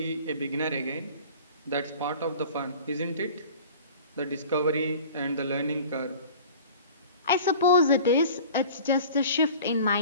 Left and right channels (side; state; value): both; inverted; correlation -0.43